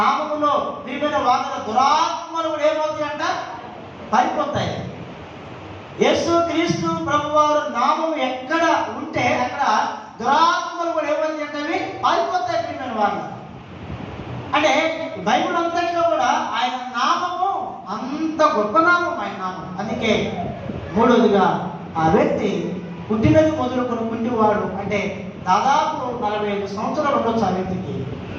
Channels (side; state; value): both; identical; correlation 1.00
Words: ప్రియమైన వాదన దురాత్మలు కూడా ఏమవుతాయంట? పారిపోతాయి. యేసు క్రీస్తు ప్రభువారు నామం ఎక్కడ ఉంటే అక్కడ దురాత్మలు కూడా ఏమవుతాయి అంటే అవి పారిపోతాయి ప్రియమైన వాళ్ళు. అంటే బైబిల్ అంతట్లో కూడా ఆయన నామము అంత గొప్ప నామం, ఆయన నామం. అందుకే మూడవదిగా ఆ వ్యక్తి పుట్టినది మొదలుకొని పుట్టివాడు అంటే దాదాపు 45 సంవత్సరాలు ఉండొచ్చు ఆ వ్యక్తికి.